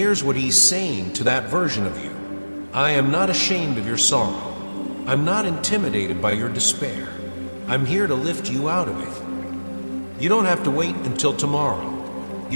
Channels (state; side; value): inverted; both; correlation -1.00